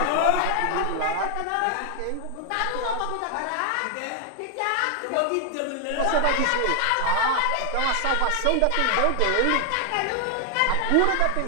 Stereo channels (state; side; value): different; both; correlation 0.00